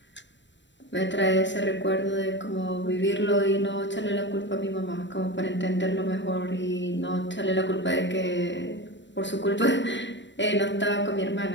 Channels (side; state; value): right; late; 0.53 ms